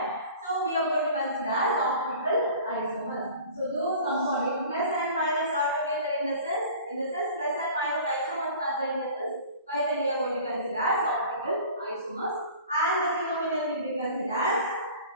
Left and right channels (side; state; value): both; inverted; correlation -0.43